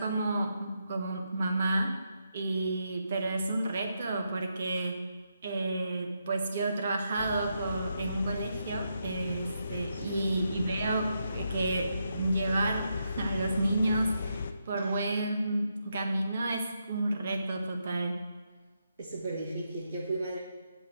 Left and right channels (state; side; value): inverted; both; correlation -0.82